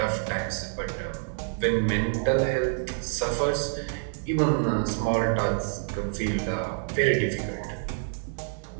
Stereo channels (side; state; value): left; silent; 58 dB below the other